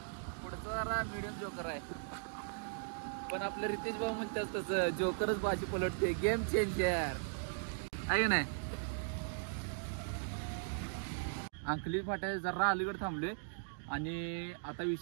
पुढचा जरा मिडियम जोकर आहे. पण आपलं रितेश भाऊ म्हणतात तसं जोकरच बाजी पलटते, गेम चेंजर आहे नाही. अंकली फाट्या जरा अलीकडे थांबले आणि आता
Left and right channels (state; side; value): silent; left; digital silence